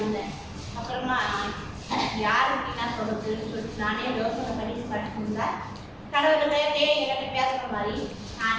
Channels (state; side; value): identical; both; correlation 1.00